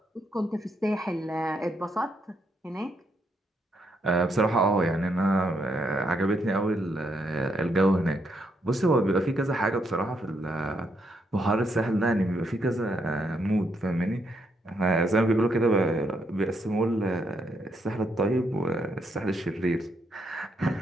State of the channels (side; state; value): both; normal; correlation 0.77